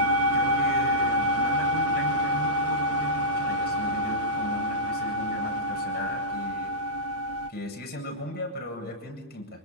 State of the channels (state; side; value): normal; both; correlation -0.16